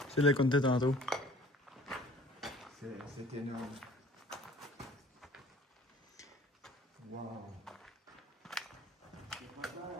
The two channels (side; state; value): both; normal; correlation 0.51